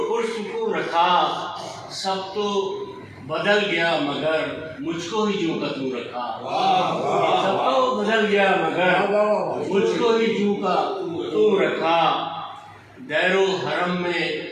پرسکون رکھا. سب تو بدل گیا مگر مجھ کو ہی جوں کا توں رکھا. سب تو بدل گیا مگر مجھ کو ہی جوں کا توں رکھا. دیر و حرم میں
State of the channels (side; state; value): both; identical; correlation 1.00